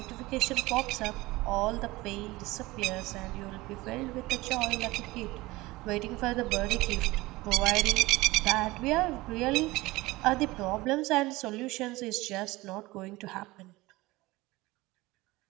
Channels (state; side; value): quieter; left; 20.4 dB